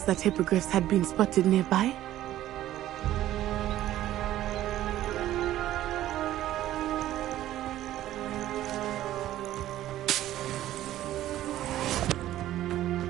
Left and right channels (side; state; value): left; quieter; 13.6 dB